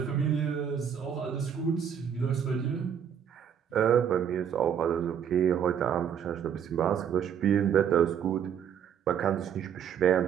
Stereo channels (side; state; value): left; quieter; 8.3 dB